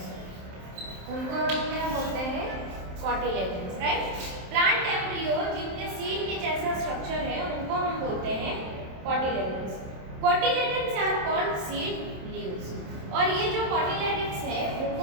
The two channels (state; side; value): late; left; 27 ms